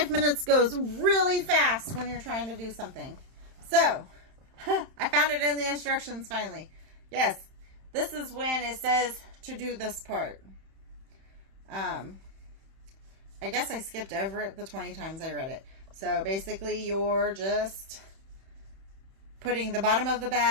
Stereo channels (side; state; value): left; late; 31 ms